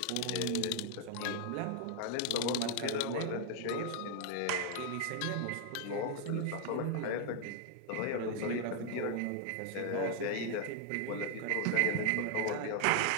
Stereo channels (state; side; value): different; both; correlation 0.00